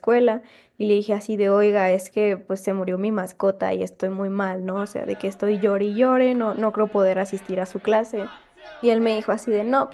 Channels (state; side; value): identical; both; correlation 1.00